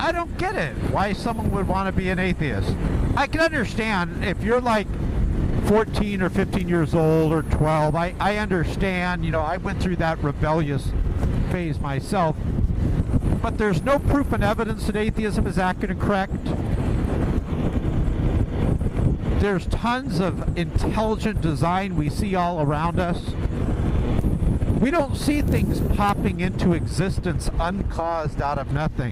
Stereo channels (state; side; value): identical; both; correlation 1.00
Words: don't get it, why someone would want to be an atheist. I can understand if you're like 14 or 15 years old or 12, I understand, you know, I went through that rebellious phase myself. but there's no proof and evidence that atheism is accurate and correct. There's tons of intelligent design we see all around us. We don't see things popping into existence uncaused out of